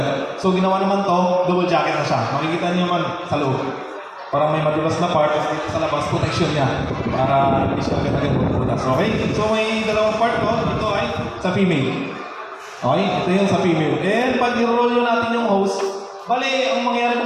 So ginawa naman to, double jacket na siya. Makikita niyo naman sa loob. Parang may madulas na part, tapos dito sa labas, protection niya. Para hindi siya agad-agad mabubutas. Okay? So may dalawang part ko. Ito ay sa female. Okay, ito yung sa female. And pag i-roll nyo natin yung hose, bali, ang mangyayari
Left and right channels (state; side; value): identical; both; correlation 1.00